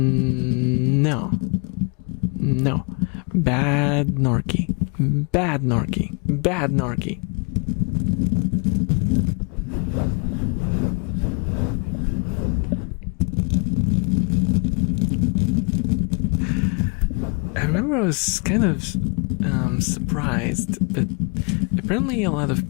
No. Bad Norky. I remember I was kind of surprised, but apparently a lot of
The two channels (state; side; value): quieter; right; 34.0 dB